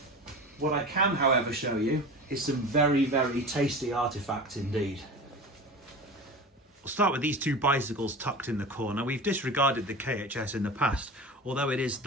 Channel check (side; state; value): both; normal; correlation 0.32